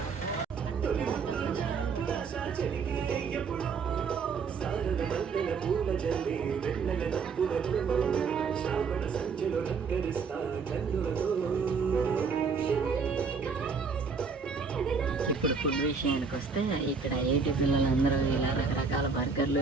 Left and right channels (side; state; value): left; quieter; 5.3 dB